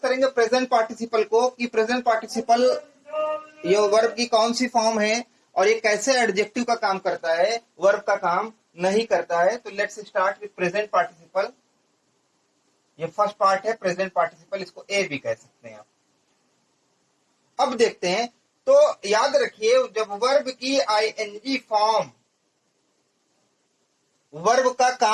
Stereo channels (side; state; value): both; identical; correlation 1.00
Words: प्रेजेंट पार्टिसिपल को, कि प्रेजेंट पार्टिसिपल ये वर्ब की कौन सी फॉर्म है और ये कैसे एडजेक्टिव का काम करता है, वर्ब का काम नहीं करता है। तो let's start with present participle. ये फर्स्ट पार्ट है प्रेजेंट पार्टिसिपल, इसको ए भी कह सकते हैं आप। अब देखते हैं, तो याद रखिए, जब वर्ब की आईएनजी फॉर्म वर्ब का